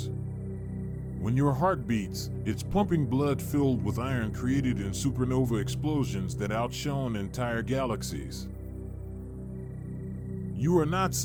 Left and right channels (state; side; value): identical; both; correlation 1.00